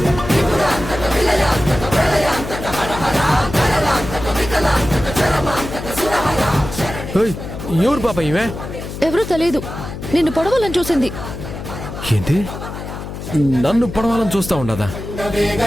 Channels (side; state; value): left; noise; hum, 9 dB below the sound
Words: ఎవరు పాప ఇవే? ఎవరూ తెలియదు, నిన్ను పొడవాలని చూసింది. ఏంటి, నన్ను పొడవాలని చూస్తా ఉండదా?